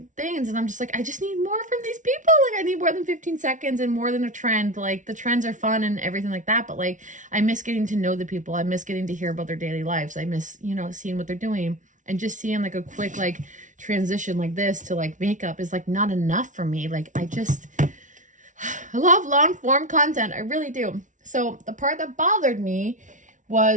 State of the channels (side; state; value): left; late; 0.37 ms